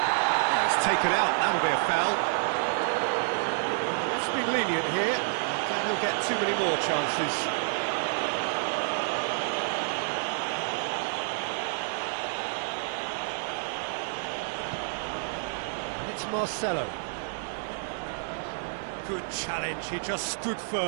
taken out, that'll be a foul. It's been lenient here. Then he'll get too many more chances. And it's Marcelo. Good challenge, he just stood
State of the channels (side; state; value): left; silent; 59 dB below the other